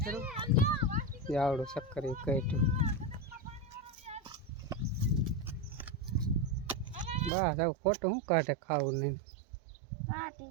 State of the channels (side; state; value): left; drops out; at 7.3 s